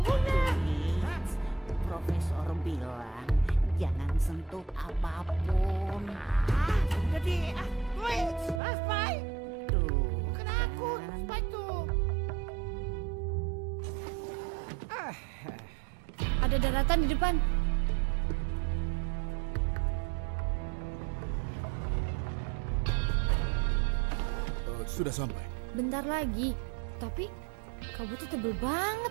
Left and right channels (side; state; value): left; drops out; at 8.6 s